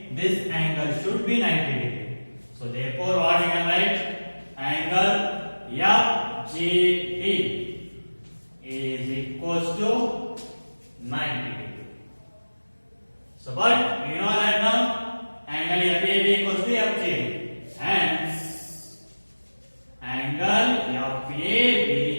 this angle should be 90 degree. So therefore what we can write? Angle FGD is equals to 90 degree. So but you know that now angle FAB equals to FGD. Hence angle FAB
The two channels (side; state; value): both; inverted; correlation -1.00